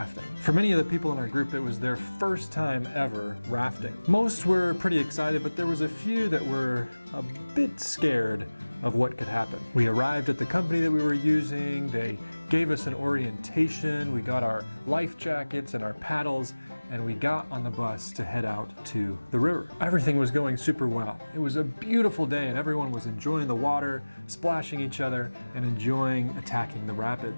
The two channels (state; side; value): inverted; both; correlation -1.00